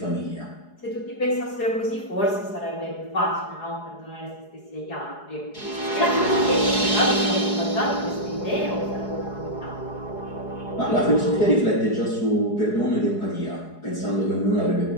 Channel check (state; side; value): late; right; 4.8 ms